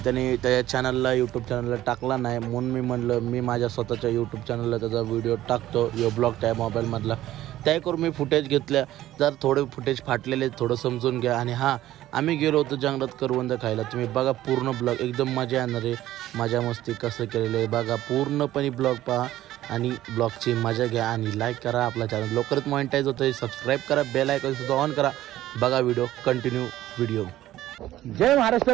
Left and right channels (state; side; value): quieter; left; 14.2 dB